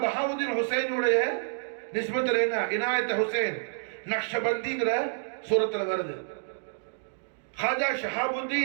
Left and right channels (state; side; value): silent; left; digital silence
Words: பஹாவுத்தீன் ஹுசைனுடைய நிஸ்பத்துல என்ன? இனாயத்தை ஹுசைன் நக்ஷபந்திங்கிற சூரத்துல வருது. ஹாஜா